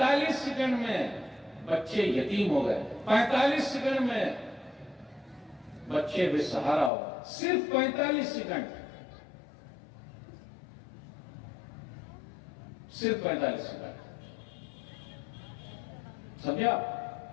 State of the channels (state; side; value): drops out; right; at 6.9 s